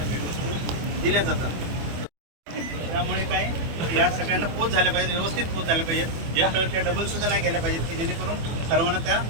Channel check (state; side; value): late; left; 24 ms